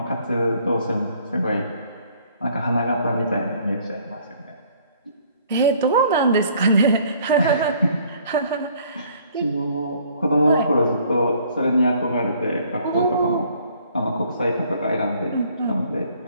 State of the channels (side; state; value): both; inverted; correlation -0.59